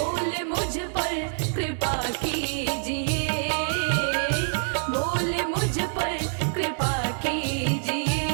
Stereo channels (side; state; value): left; silent; digital silence